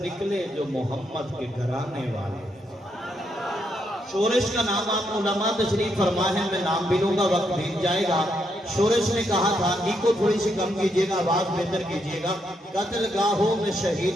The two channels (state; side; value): normal; both; correlation 0.78